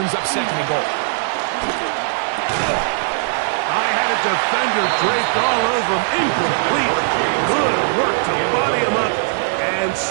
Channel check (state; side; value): silent; left; digital silence